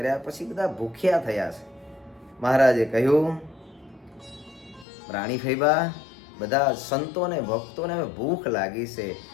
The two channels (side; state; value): right; drops out; at 4.9 s